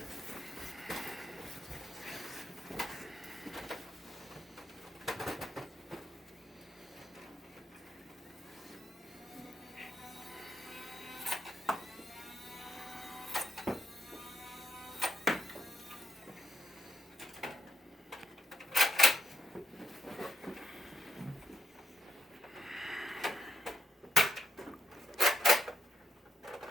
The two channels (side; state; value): both; normal; correlation 0.80